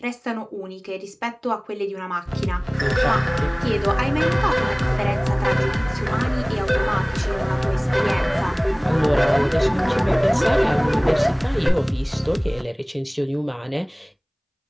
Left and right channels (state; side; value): identical; both; correlation 1.00